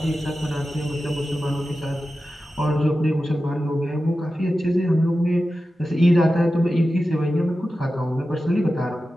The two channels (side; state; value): both; normal; correlation 0.93